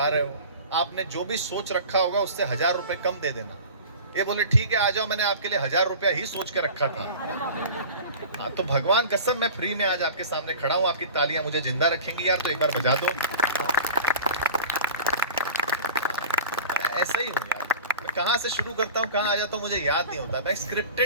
रहे हो, आपने जो भी सोच रखा होगा उससे 1000 रुपये कम दे देना। ये बोले ठीक है आ जाओ, मैंने आपके लिए 1000 रुपया ही सोच के रखा था। हाँ, तो भगवान कसम मैं फ्री में आज आपके सामने खड़ा हूँ। आपकी तालियां मुझे जिंदा रखेंगी यार, तो एक बार बजा दो। ऐसा ही हूँ यार, मैं कहाँ से शुरू करता हूँ कहाँ आ जाता हूँ मुझे याद नहीं होता। मैं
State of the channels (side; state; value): both; inverted; correlation -0.38